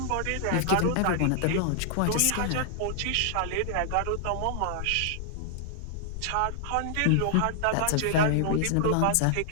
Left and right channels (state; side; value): different; both; correlation -0.01